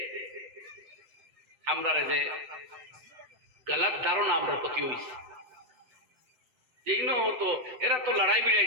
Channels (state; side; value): late; left; 8.0 ms